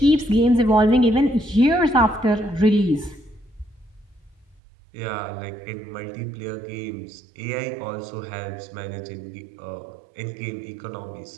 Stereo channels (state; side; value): drops out; left; at 4.6 s